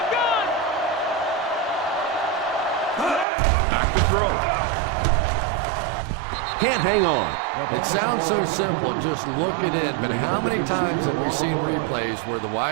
Back to throw. Can't hang on. It sounds so simple, just look at it, but how many times have we seen replays where the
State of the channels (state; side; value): drops out; left; at 3.2 s